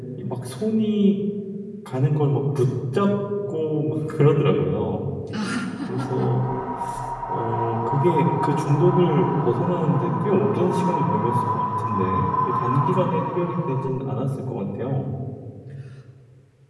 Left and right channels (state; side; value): identical; both; correlation 1.00